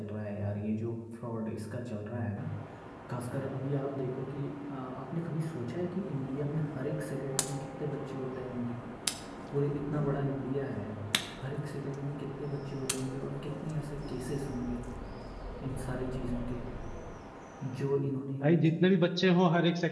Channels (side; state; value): both; identical; correlation 1.00